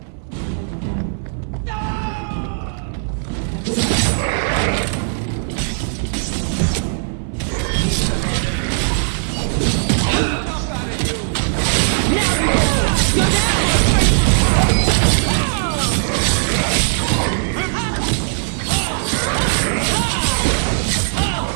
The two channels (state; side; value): silent; left; 56 dB below the other